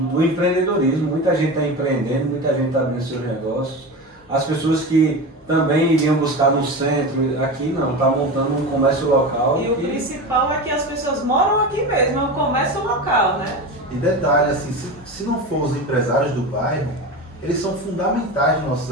do empreendedorismo. Muita gente está empreendendo, muita gente está abrindo seus negócios. As pessoas que também iriam buscar no centro, aqui não, está montando um comércio local. E o principal é que as pessoas moram aqui mesmo, é um comércio local, né? E detalhe, assim, se não for os empresários do bairro, eles são fundamentais nos nossos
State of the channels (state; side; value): normal; both; correlation 0.25